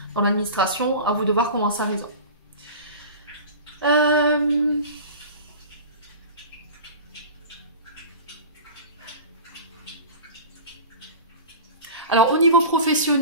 dans l'administration, à vous de voir comment ça résonne. Alors au niveau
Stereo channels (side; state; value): both; inverted; correlation -0.34